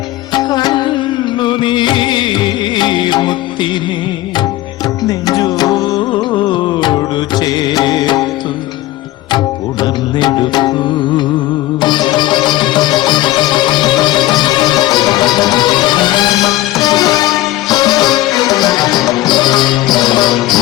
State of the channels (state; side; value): quieter; right; 16.5 dB